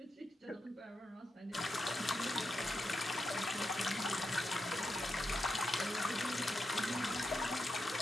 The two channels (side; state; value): both; normal; correlation 0.86